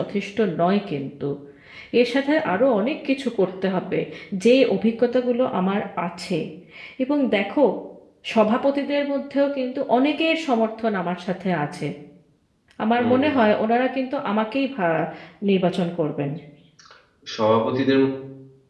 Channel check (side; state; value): both; identical; correlation 1.00